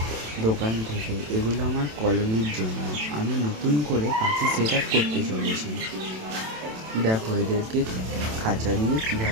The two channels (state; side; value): late; left; 27 ms